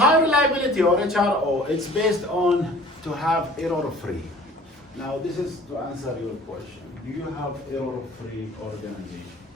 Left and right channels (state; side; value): normal; both; correlation 0.49